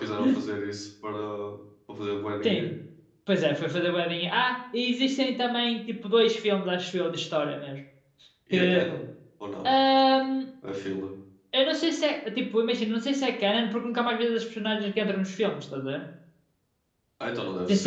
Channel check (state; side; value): identical; both; correlation 1.00